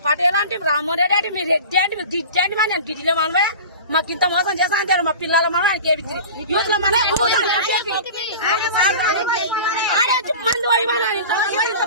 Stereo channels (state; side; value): inverted; both; correlation -0.36